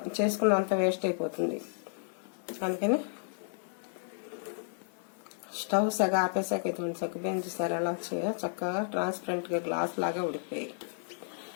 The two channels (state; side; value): silent; right; digital silence